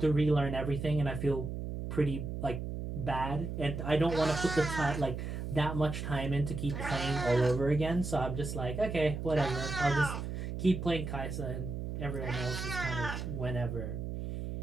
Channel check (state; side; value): noise; right; hum, 5 dB below the sound